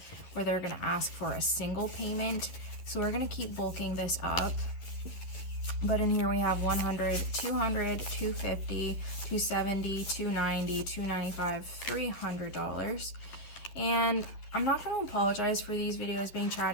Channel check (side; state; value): right; late; 11 ms